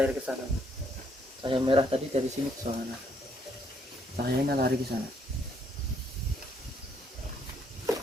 ke sana. Cahaya merah tadi dari sini ke sana. Cahayanya lari ke sana.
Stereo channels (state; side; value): normal; both; correlation 0.70